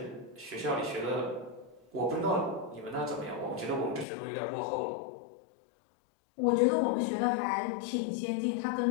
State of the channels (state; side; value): drops out; right; at 4.0 s